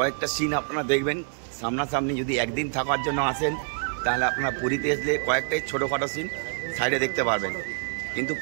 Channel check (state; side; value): silent; left; 61 dB below the other